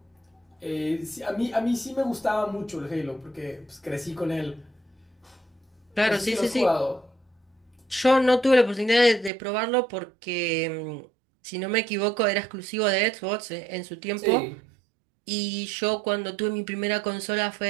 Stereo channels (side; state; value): left; drops out; at 9.3 s